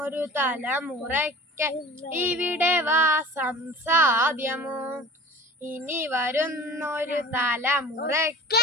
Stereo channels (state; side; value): normal; both; correlation 0.40